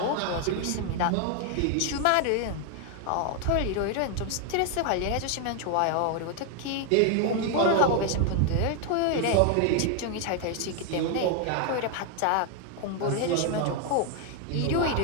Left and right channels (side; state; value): both; different; correlation 0.01